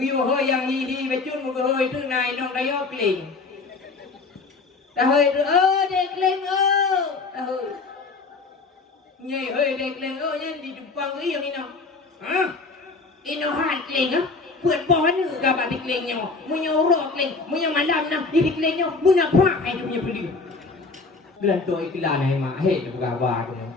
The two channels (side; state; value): right; quieter; 4.0 dB